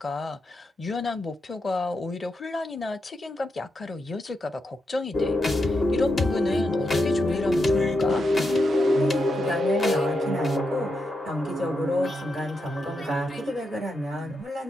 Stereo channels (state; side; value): normal; both; correlation 0.85